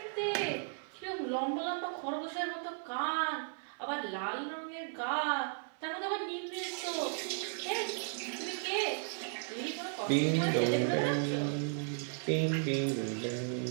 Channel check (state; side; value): silent; left; digital silence